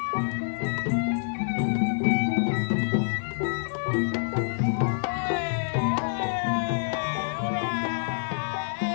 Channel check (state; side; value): silent; right; digital silence